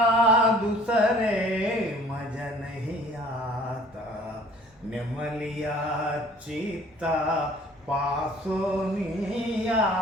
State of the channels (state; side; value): normal; both; correlation 0.52